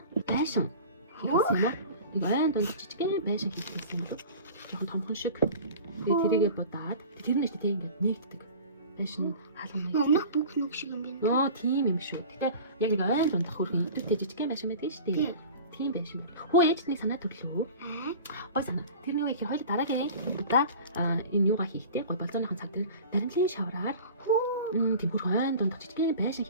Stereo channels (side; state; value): both; inverted; correlation -0.39